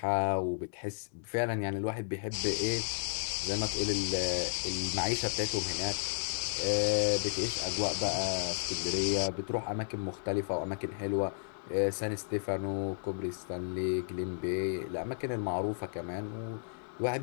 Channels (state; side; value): silent; right; digital silence